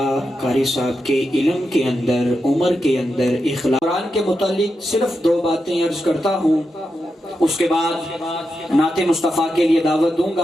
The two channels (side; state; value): both; normal; correlation 0.87